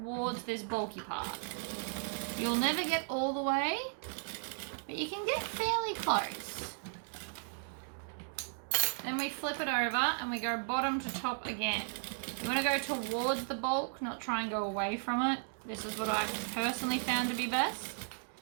this bulky part. You'll never get all the way, but you can get fairly close. Then we flip it over and we go bottom to top again. You want to go towards the bulk, not try and go away from it. This is what I've personally found to be best.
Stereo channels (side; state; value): left; silent; 54 dB below the other